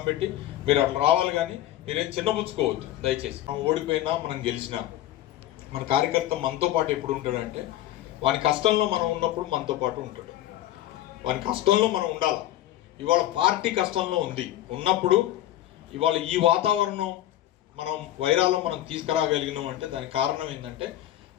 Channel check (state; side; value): quieter; right; 13.5 dB